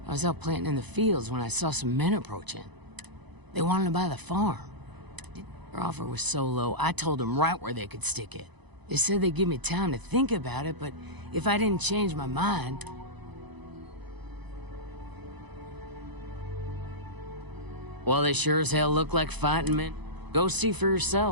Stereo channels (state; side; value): late; left; 1.0 ms